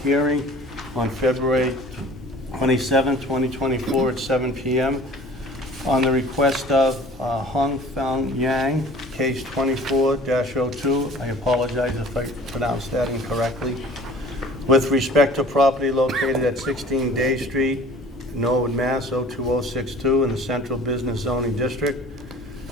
hearing on February 27, 2024 at 7 p.m. on the request of Hong Feng Yang, case 24-02. I apologize if I pronounced that incorrectly. With respect to property located at 16 Day Street, Norwood, Mass. 02062 in the Central Business Zoning District.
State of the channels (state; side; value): normal; both; correlation 0.46